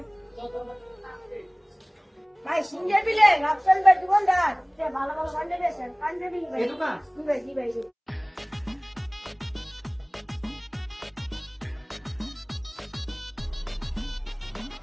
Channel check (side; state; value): both; identical; correlation 1.00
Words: ভাই সিঙ্গে বিলে রাফসাল ভাই দোকানদার, সে ভালো ভালো পাঞ্জাবি আছে। পাঞ্জাবি ভাই। এই দোকান? জি ভাই, জি ভাই।